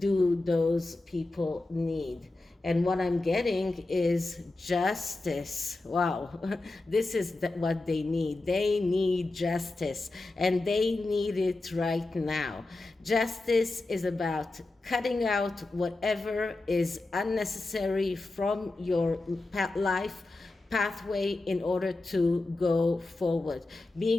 those people need? And what I'm getting is justice. Wow, this is what they need. They need justice, and they need it right now. Justice is about cutting out whatever is unnecessary from your life pathway in order to go forward.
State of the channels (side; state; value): right; quieter; 3.0 dB